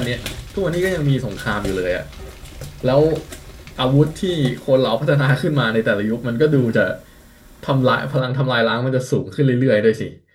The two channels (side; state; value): both; identical; correlation 1.00